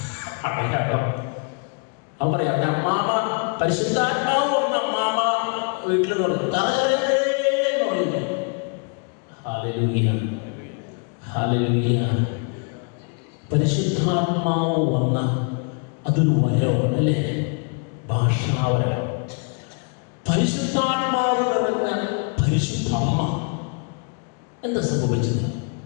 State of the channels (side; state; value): right; quieter; 38.7 dB